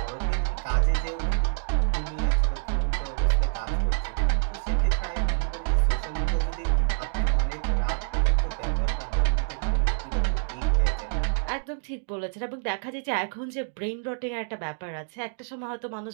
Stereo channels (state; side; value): silent; left; 60 dB below the other